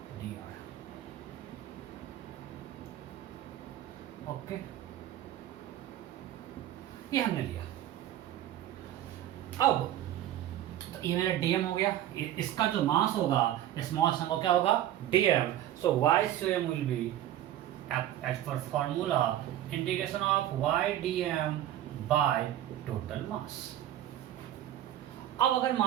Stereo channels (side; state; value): left; quieter; 12.5 dB